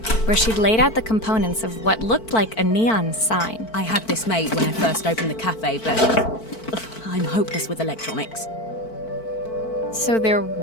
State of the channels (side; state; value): right; late; 4.5 ms